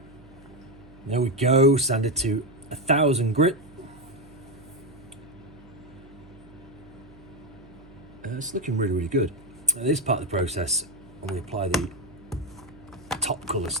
There we go, sanded to 1000 grit. It's looking really, really good. Now, this part of the process, when we apply the top colour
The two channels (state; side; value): noise; right; hum, 22 dB below the sound